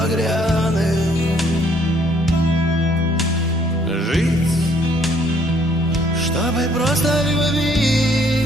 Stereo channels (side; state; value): both; normal; correlation 0.64